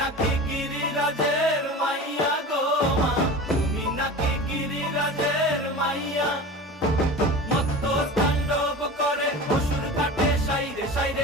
গিরিরাজের মাইয়া গো মা, তুমি নাকি গিরিরাজের মাইয়া। মত্ত তাণ্ডব করে অসুর কাটে সাইরে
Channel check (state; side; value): normal; both; correlation 0.33